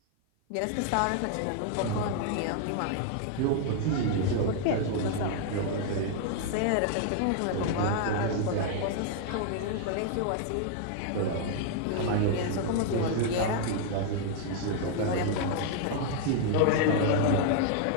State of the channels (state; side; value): different; both; correlation 0.00